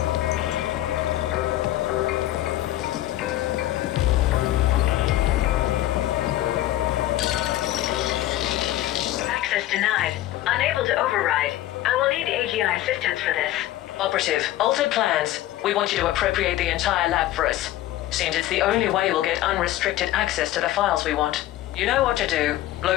Access denied. Unable to override. I will need AGI assistance for this. Operative, altered plans. We want you to appropriate the entire lab for us. Seems it's the only way we'll get unrestricted access to the files we want. You know what to do.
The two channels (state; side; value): quieter; right; 14.7 dB